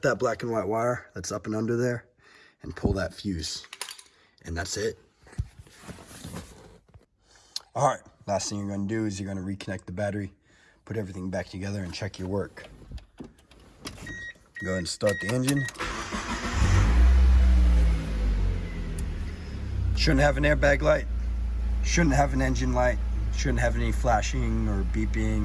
that black and white wire that's up and under there and pull that fuse. And that's it. All right, last thing you're gonna do is you're gonna reconnect the battery, put everything back together and check your work. Go ahead and start the engine. Shouldn't have an airbag light, shouldn't have an engine light, shouldn't have any flashing or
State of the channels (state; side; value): identical; both; correlation 1.00